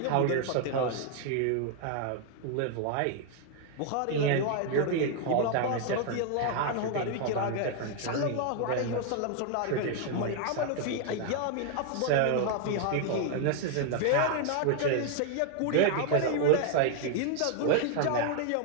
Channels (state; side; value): different; both; correlation 0.00